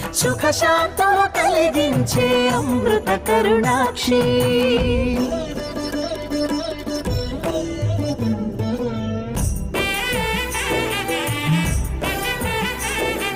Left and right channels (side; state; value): both; identical; correlation 1.00